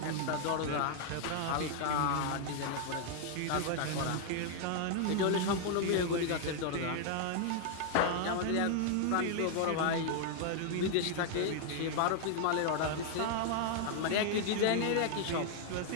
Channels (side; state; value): both; different; correlation 0.00